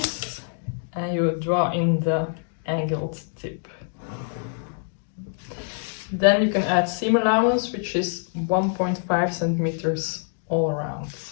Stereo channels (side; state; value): right; silent; 62 dB below the other